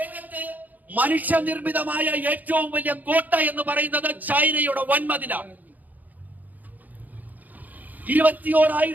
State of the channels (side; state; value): left; late; 0.081 ms